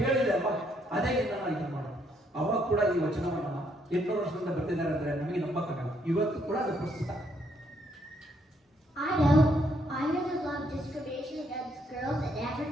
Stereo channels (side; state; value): both; normal; correlation 0.72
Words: ಅಲ್ವಾ, ಅದೇ ನಾನು ಇದು ಮಾಡೋದು. ಅವಾಗ ಕೂಡ ಈ ವಚನವನ್ನ 800 ವರ್ಷದಿಂದ ಬರ್ತಿದ್ದಾರೆ ಅಂದ್ರೆ ನಮಗೆ ನಂಬಕ್ಕಾಗಲ್ಲ. ಇವತ್ತು ಕೂಡ ಅದು ಪ್ರಸ್ತುತ. I know there's a lot of discrimination against girls and